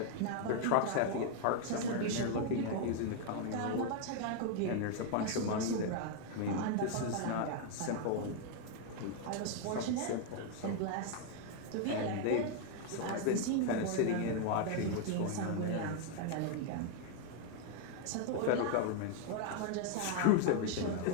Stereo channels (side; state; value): both; different; correlation 0.00